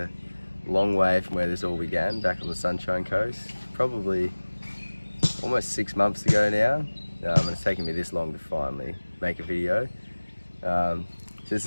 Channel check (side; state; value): both; inverted; correlation -1.00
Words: long way from where this all began, back on the Sunshine Coast. Probably almost 6 months ago now, and it's taken me this long to finally make a video. So this